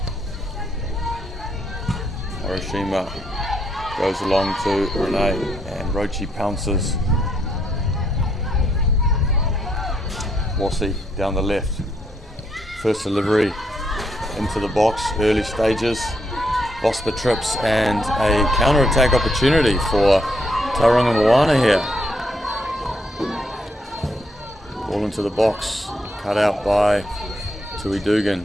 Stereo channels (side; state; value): both; normal; correlation 0.75